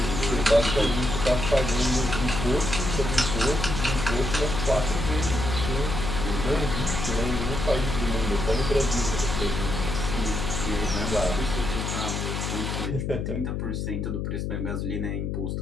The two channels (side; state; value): left; noise; hum, 2 dB below the sound